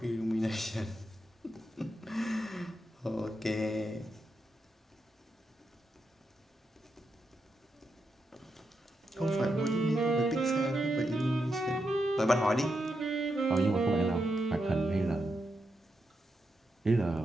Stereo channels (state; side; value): normal; both; correlation 0.85